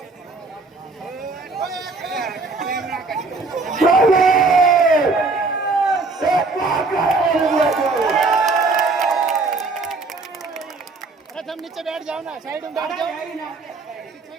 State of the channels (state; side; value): quieter; left; 3.7 dB